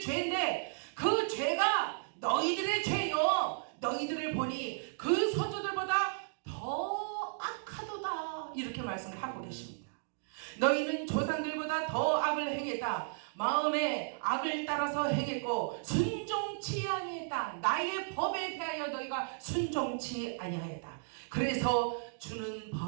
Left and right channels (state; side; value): silent; left; digital silence